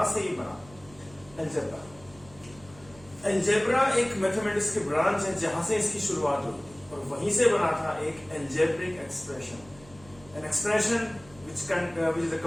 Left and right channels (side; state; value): right; noise; hum, 23 dB below the sound